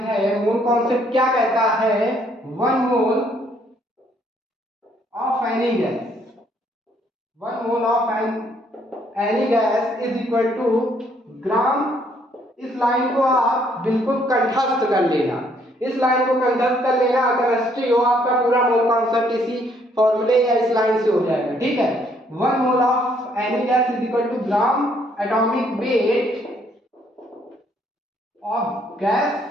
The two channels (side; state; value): both; normal; correlation 0.67